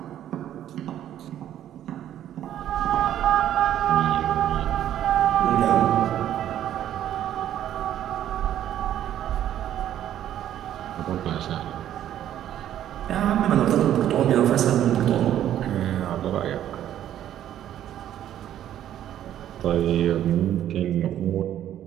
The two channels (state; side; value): quieter; left; 11.4 dB